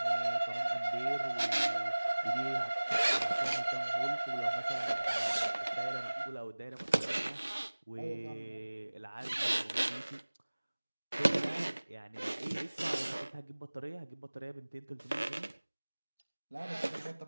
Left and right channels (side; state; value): both; inverted; correlation -1.00